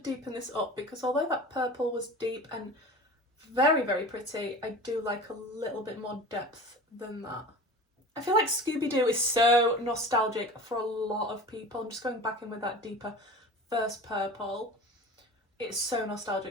this up because although that purple was deep and very, very pretty, I do like a little bit more depth than that. I feel like Scooby Doo is so nostalgic for a lot of people. I'm just going back in with that deeper first purple. It's so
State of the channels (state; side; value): normal; both; correlation 0.37